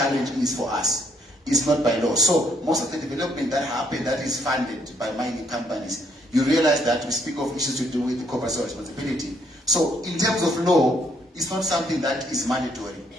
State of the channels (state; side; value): normal; both; correlation 0.69